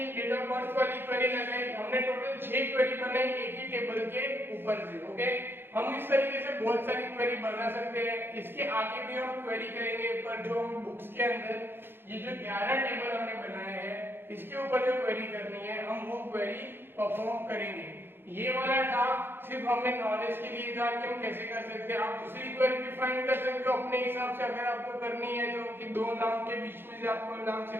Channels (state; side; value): late; left; 0.10 ms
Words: डेट ऑफ बर्थ वाली क्वेरी लगाई, हमने टोटल 6 क्वेरी बनाई एक ही टेबल के ऊपर से। ओके, हम इस तरीके से बहुत सारी क्वेरी बना सकते हैं। इसके आगे भी हम क्वेरी करेंगे, पर जो हम बुक्स के अंदर ये जो 11 टेबल हमने बनाए हैं इसके ऊपर जो क्वेरी करनी है हम वो क्वेरी परफॉर्म करेंगे। ये वाला था सिर्फ हमें नॉलेज के लिए था कि हम कैसे कर सकते हैं। आप दूसरी क्वेरी भी फाइंड कर सकते हो अपने हिसाब से, अगर आपको करनी है तो कि 2 नाम के बीच में से आप कोई नाम